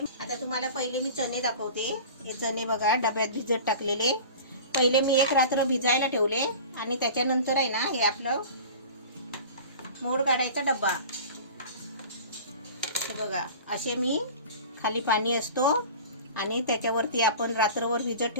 आता तुम्हाला पहिले मी चणे दाखवते. हे चणे बघा डब्यात भिजत टाकलेले. पहिले मी एक रात्र भिजायला ठेवले आणि त्याच्यानंतर आहे ना हे आपलं मोड काढायचा डब्बा. हे बघा असे मी खाली पाणी असतो आणि त्याच्यावरती आपण रात्रभर भिजत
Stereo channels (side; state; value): both; inverted; correlation -0.38